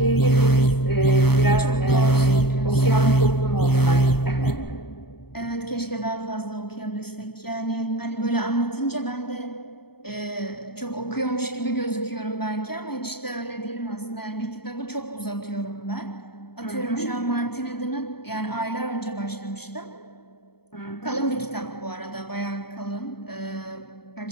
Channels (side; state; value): right; late; 0.96 ms